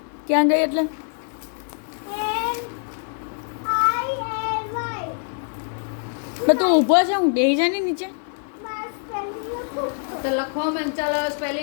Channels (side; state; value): right; silent; 59 dB below the other